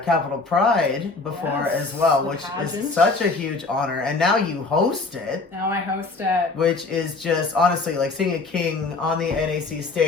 Pride before as well, which is such a huge honor. And now you host it. Now I host it. Which is just honestly like seeing a king on the NAC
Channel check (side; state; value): right; quieter; 3.8 dB